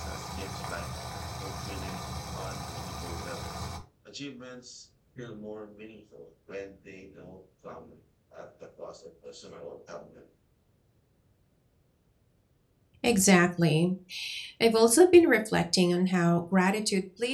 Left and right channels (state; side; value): identical; both; correlation 1.00